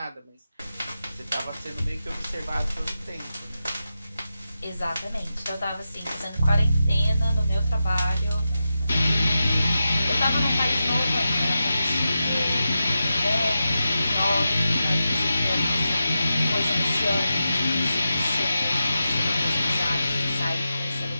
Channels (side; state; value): both; inverted; correlation -0.90